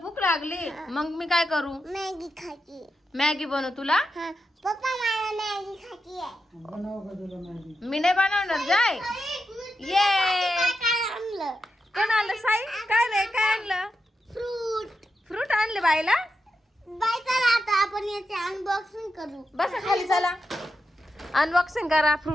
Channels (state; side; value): normal; both; correlation 0.87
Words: लागली मग मी काय करू मॅगी खायची. मॅगी बनवू तुला पप्पा मला मॅगी खायची आहे. मी नाही बनवणार जाय ये कोण आणलं साई काय रे काय आणलं फ्रूट आणले बाईला बाय चला आता आपण याचे अनबॉक्सिंग करू. बसा खाली चला अनबॉक्सिंग करा